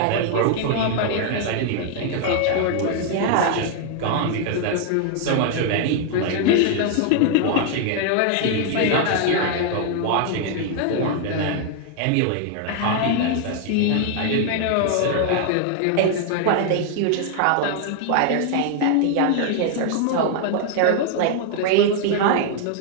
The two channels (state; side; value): different; both; correlation 0.00